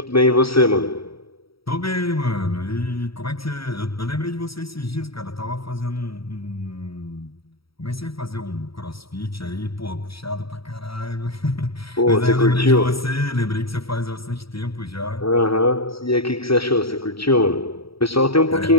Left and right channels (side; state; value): right; late; 0.75 ms